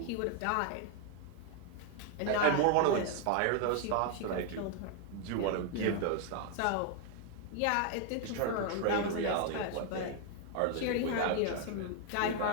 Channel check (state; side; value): different; both; correlation 0.01